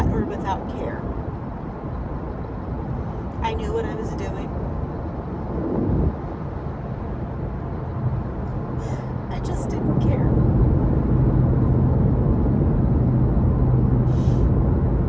or without care. I knew what I was doing. I just didn't care.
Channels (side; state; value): both; identical; correlation 1.00